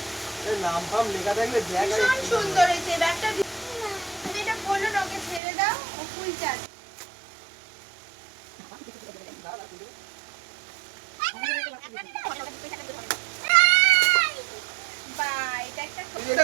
এর নাম ফাম লেখা থাকলে ব্যাগ আর ভীষণ সুন্দর হয়েছে ব্যাগটা। তুমি এটা বলো না, ওকে ছেড়ে দাও, ও খুলছে আজ। বাহ, এটা একটা এটা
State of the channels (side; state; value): left; drops out; at 5.4 s